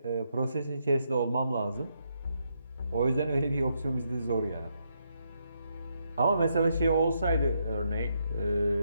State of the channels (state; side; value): inverted; both; correlation -0.78